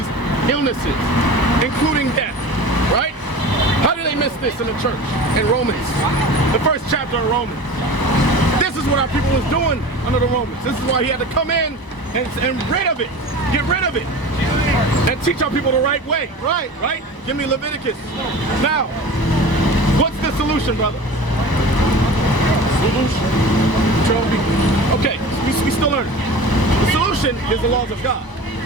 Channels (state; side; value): late; right; 1.0 ms